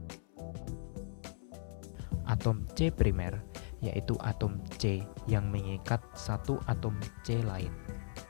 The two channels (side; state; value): right; silent; 53 dB below the other